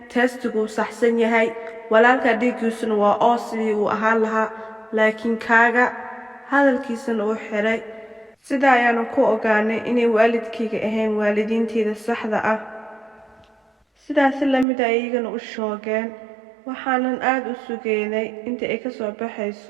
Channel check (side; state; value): left; drops out; at 14.7 s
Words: testigu saxsan yahay. Walaalka dhiiggiisuna waa oo sidii uu ahaan lahaa, laakiin kaaga hadalkiisana uu xiray. Sidaa ayaanu ku ogaanay inay waalidkayga ahayn waalidiinteeda saxda ah. Sidaas la mid ah iyagana u shoogeen. Waxaanan aad u sugeynay inta ay ka soo